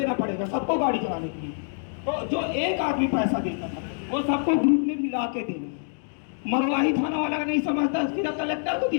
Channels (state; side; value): silent; right; digital silence